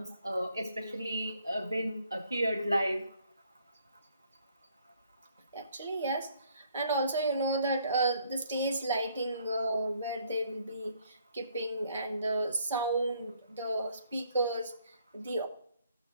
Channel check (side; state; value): both; inverted; correlation -0.66